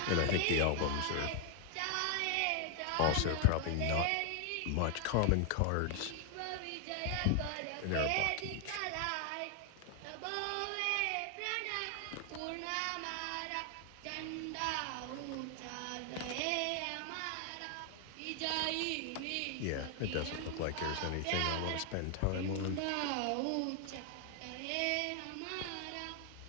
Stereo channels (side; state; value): both; different; correlation 0.00